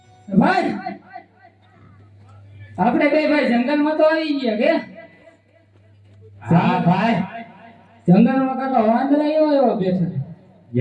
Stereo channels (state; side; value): identical; both; correlation 1.00